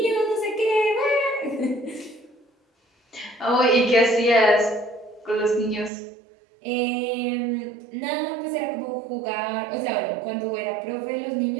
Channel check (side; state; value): left; drops out; at 5.9 s